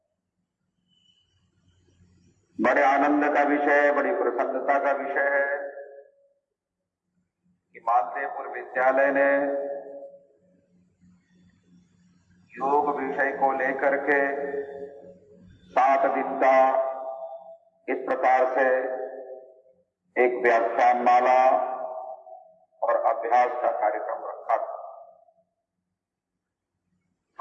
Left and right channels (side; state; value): both; identical; correlation 1.00